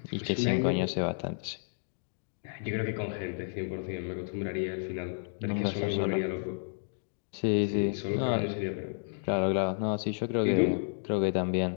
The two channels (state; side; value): silent; right; digital silence